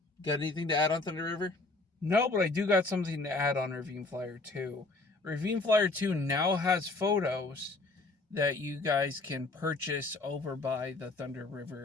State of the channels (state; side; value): quieter; right; 3.2 dB